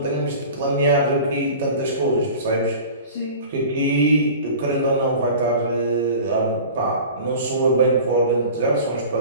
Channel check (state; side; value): inverted; both; correlation -0.40